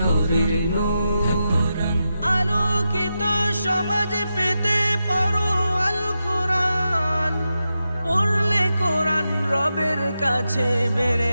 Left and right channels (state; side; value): inverted; both; correlation -0.88